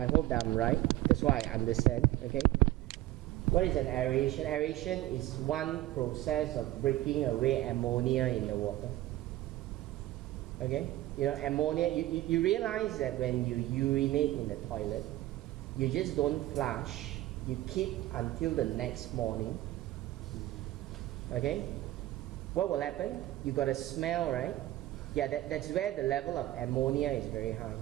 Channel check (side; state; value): left; quieter; 15.8 dB